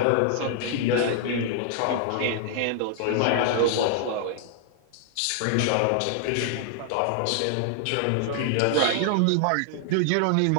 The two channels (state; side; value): different; both; correlation -0.01